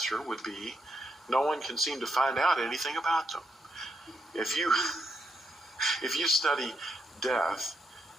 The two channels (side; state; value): both; normal; correlation 0.80